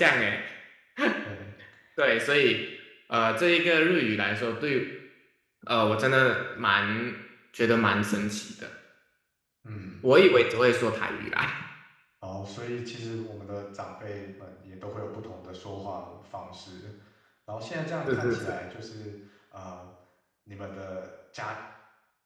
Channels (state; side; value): identical; both; correlation 1.00